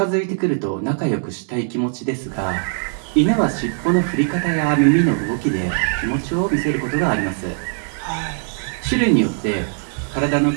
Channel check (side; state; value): left; silent; digital silence